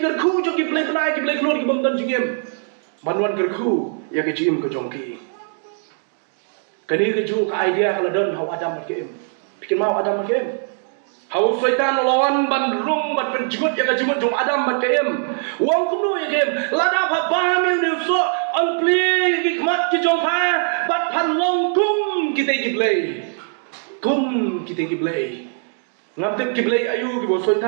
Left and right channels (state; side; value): silent; left; 55 dB below the other